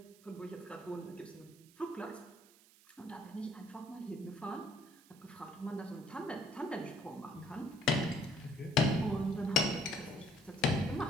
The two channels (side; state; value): right; noise; hiss, 25 dB below the sound